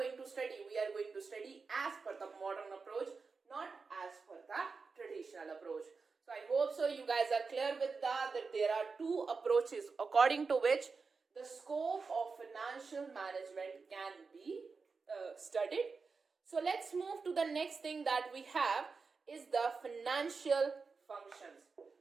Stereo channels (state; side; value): quieter; left; 4.7 dB